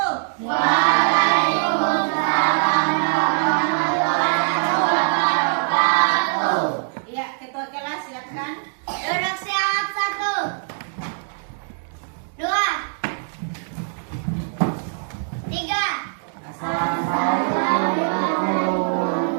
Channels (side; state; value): left; silent; digital silence